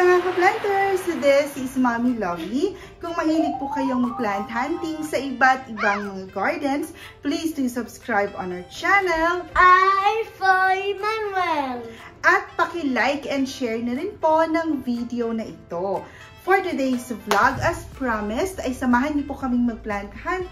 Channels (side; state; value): both; identical; correlation 1.00